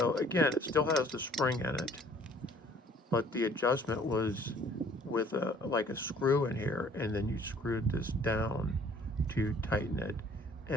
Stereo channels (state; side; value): normal; both; correlation 0.56